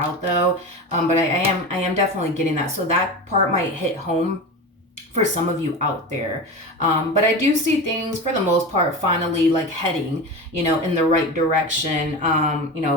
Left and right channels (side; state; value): both; normal; correlation 0.27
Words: though. But I am definitely getting that. So that part might hit home for some of you out there. But I do see things for the most part finally like heading, you know, in the right direction, you